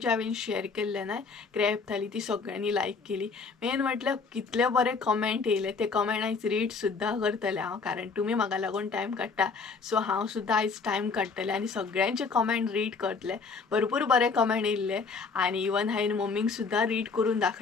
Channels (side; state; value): right; quieter; 4.8 dB